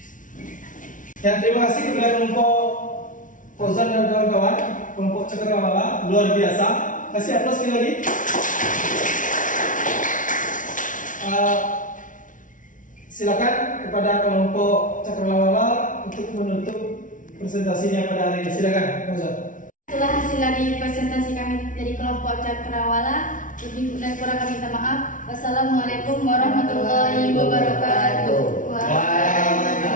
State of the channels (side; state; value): right; late; 0.38 ms